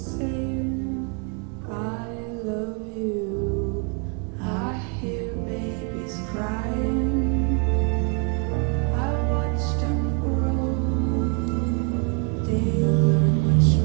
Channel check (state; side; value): quieter; left; 35.8 dB